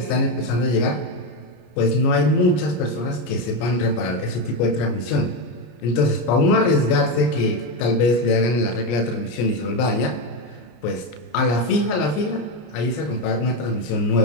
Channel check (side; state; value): right; late; 33 ms